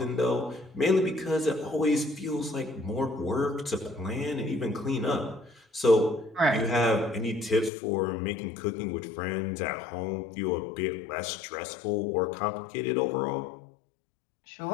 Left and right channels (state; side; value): drops out; right; at 7.7 s